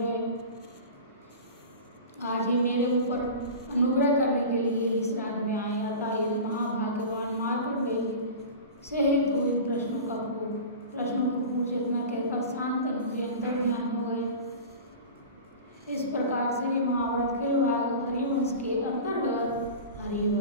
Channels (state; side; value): inverted; both; correlation -0.33